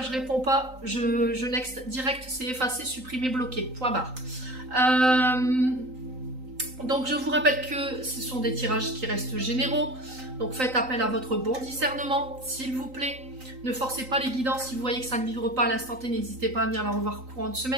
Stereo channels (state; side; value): late; left; 3.9 ms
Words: je réponds pas, je next direct, c'est effacer, supprimer, bloquer, point barre. Donc je vous rappelle que ce sont des tirages qui restent généraux, donc faites appel à votre bon discernement, s'il vous plaît. Ne forcez pas les guidances, si vous voyez que ça ne vibre pas à l'instant T, n'hésitez pas à venir la revoir courant de